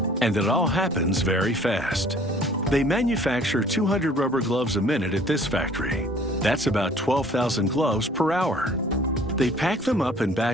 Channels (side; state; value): both; normal; correlation 0.53